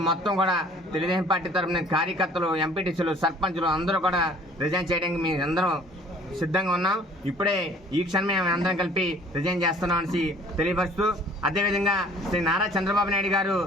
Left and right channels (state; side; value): normal; both; correlation 0.53